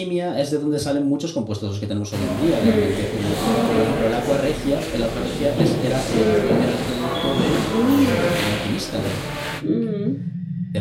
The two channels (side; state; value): both; identical; correlation 1.00